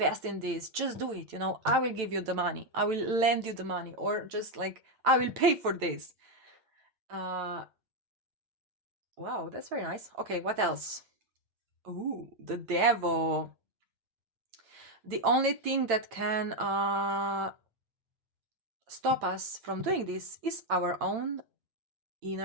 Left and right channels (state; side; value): late; left; 8.9 ms